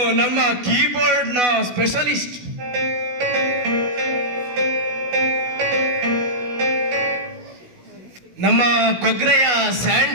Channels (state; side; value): late; left; 16 ms